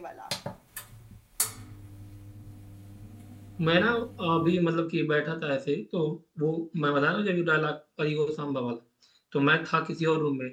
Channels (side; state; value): both; identical; correlation 1.00